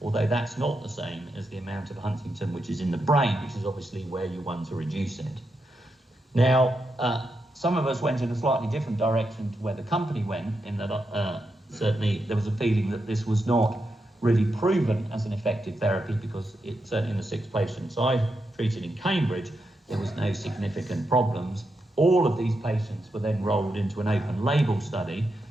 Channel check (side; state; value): both; normal; correlation 0.85